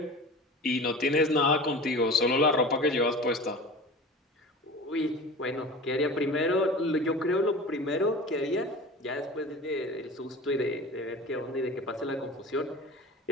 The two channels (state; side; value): normal; both; correlation 0.36